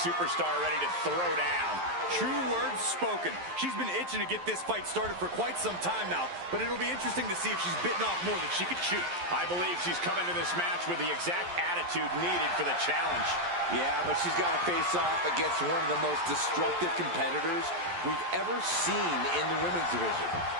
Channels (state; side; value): late; left; 11 ms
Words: ready to throw down. True words spoken. She's been itching to get this fight started for quite some time now, but it'll be interesting to see if she's bitten off more than she could chew. I believe she's coming to this match with the exact attitude needed for the challenge. Yeah, but she's got to face off against one of the most destructive competitors we've ever seen in the women's division.